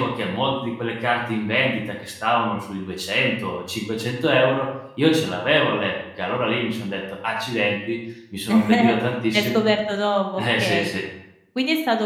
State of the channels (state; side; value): identical; both; correlation 1.00